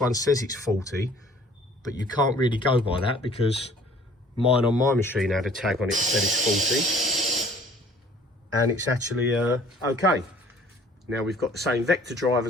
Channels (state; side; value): normal; both; correlation 0.53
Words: says it's 40, but you can't really go by that because mine on my machine had a tag on it that said it's 40, and it's actually okay. Now we've got the same vector drive